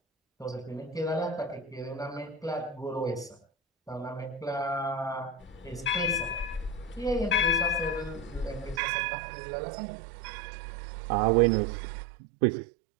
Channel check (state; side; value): drops out; left; at 8.8 s